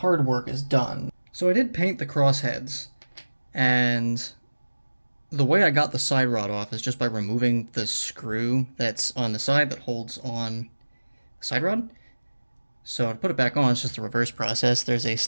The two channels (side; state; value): both; inverted; correlation -1.00